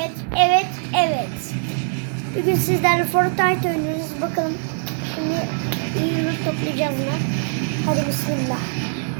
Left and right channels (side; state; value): left; silent; digital silence